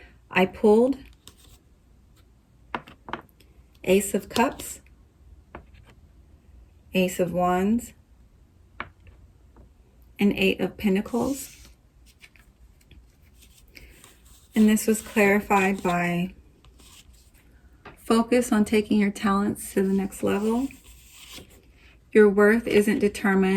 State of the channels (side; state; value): both; identical; correlation 1.00